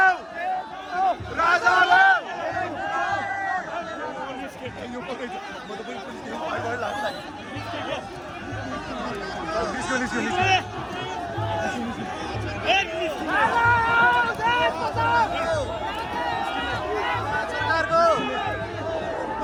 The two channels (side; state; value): both; identical; correlation 1.00